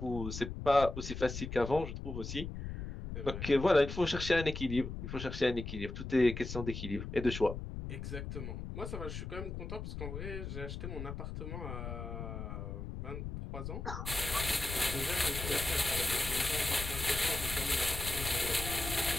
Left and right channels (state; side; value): noise; left; rumble, 7 dB below the sound